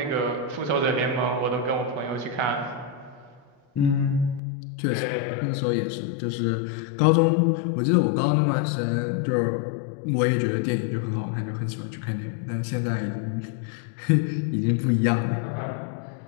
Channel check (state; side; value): drops out; right; at 4.4 s